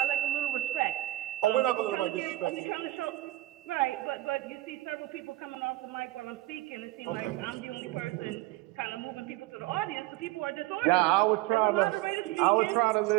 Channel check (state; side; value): quieter; left; 17.4 dB